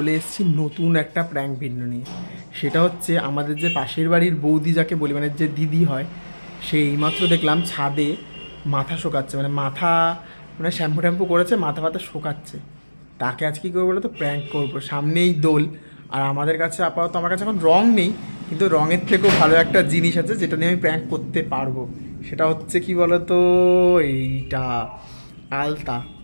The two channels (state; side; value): inverted; both; correlation -1.00